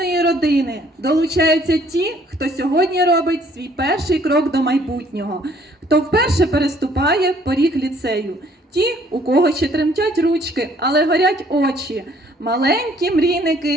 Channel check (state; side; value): normal; both; correlation 0.61